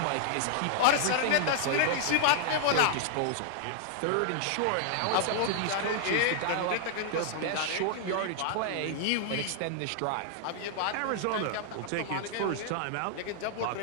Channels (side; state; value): both; different; correlation -0.01